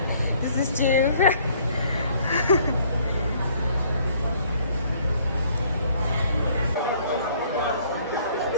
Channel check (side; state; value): both; inverted; correlation -0.60